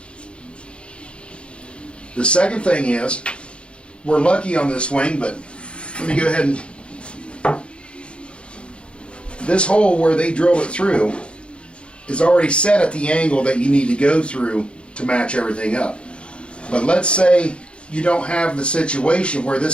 second thing is, we're lucky on this wing, but let me go ahead and... This hole where they drilled it through is already set at the angle that you need to go through to match everything up. But let's say you don't have the situation where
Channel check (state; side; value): late; right; 0.057 ms